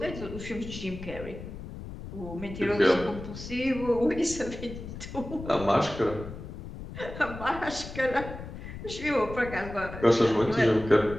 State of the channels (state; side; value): noise; left; rumble, 11 dB below the sound